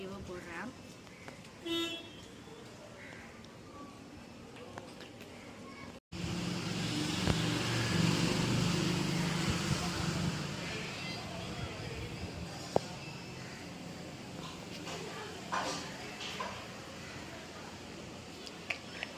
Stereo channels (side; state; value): both; identical; correlation 1.00